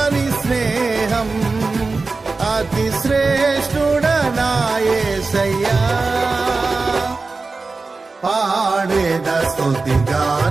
స్నేహం. అతి శ్రేష్ఠుడనా యేసయ్యా. పాడేద స్తుతి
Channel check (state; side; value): quieter; left; 3.9 dB